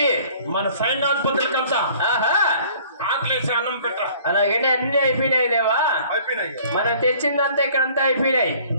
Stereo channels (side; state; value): both; inverted; correlation -0.53